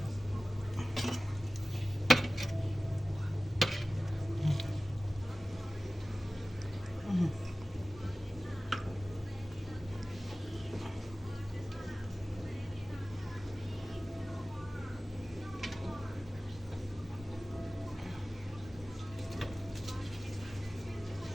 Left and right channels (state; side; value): normal; both; correlation 0.96